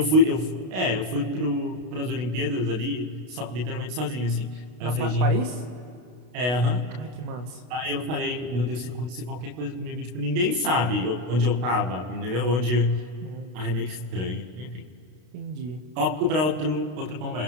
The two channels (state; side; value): late; left; 32 ms